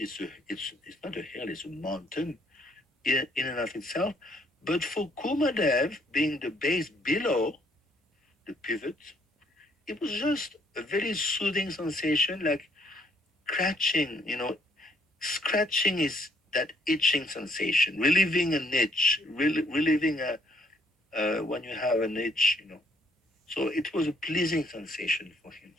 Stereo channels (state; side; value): normal; both; correlation 0.67